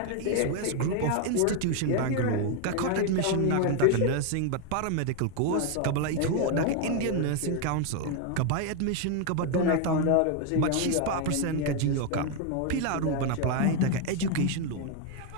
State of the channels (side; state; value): both; different; correlation 0.01